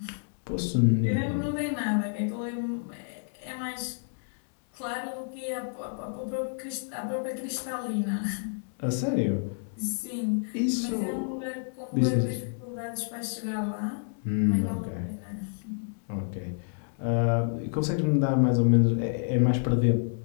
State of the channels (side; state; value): right; silent; digital silence